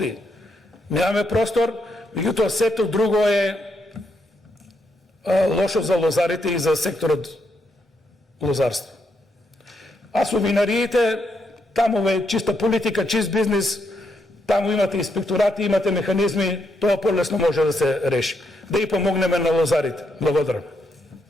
немаме простор, меѓутоа сето друго е лошо за лозарите и за секторот лозарство. А со винариите, таму е чиста политика, чист бизнис, таму имате инспекторати, имате механизми, тоа полесно може да се реши. Да и помогнеме на лозарите. Благодарам.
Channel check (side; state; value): both; normal; correlation 0.79